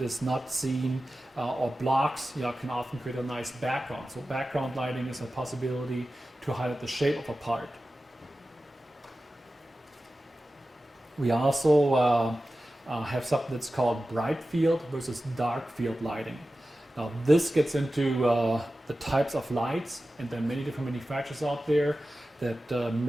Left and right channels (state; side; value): normal; both; correlation 0.94